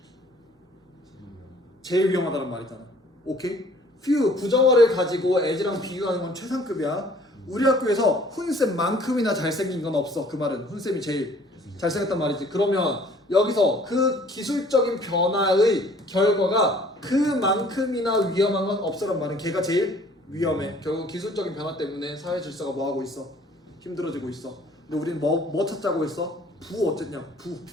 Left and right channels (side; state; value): both; normal; correlation 0.55